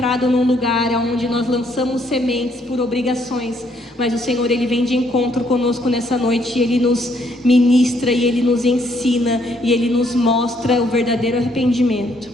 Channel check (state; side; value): normal; both; correlation 0.69